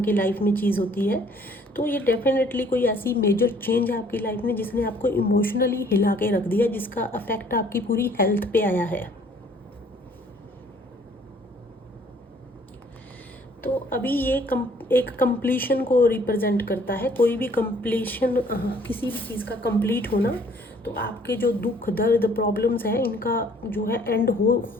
की लाइफ में चीज़ होती है। तो ये डेफिनेटली कोई ऐसी मेजर चेंज है आपकी लाइफ में जिसने आपको इमोशनली हिला के रख दिया, जिसका अफेक्ट आपकी पूरी हेल्थ पे आया है। तो अभी ये एक कंप्लीशन को रिप्रेजेंट करता है। कोई भी कंप्लीशन, किसी भी चीज़ का कंप्लीट होना, तो आपके जो दुख दर्द प्रॉब्लम्स हैं इनका जो है एंड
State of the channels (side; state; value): both; normal; correlation 0.59